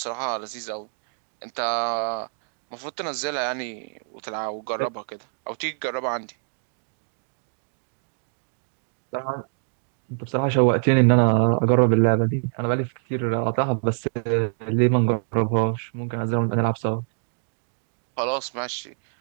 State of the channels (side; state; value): left; silent; digital silence